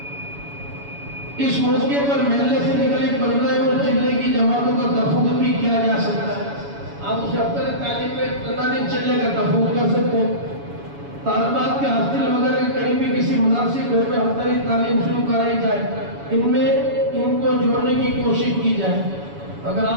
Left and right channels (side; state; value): left; late; 7.1 ms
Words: اس موقع پر محلے سے نکلے 15 اور چلے کی جماعتوں کا تفوق بھی کیا جا سکتا ہے۔ آپ اسے ہفتہ تعلیم میں 15 دن چلے کا تفوق کر سکتے ہیں۔ طالبات کے ہاسٹل وغیرہ کے قریب بھی کسی مناسب گھر میں ہفتہ تعلیم شروع کرائی جائے، ان میں ان کو جوڑنے کی کوشش کی جائے۔ اگر